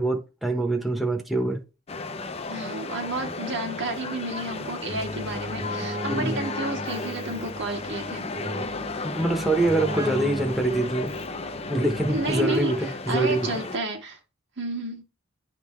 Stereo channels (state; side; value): normal; both; correlation 0.52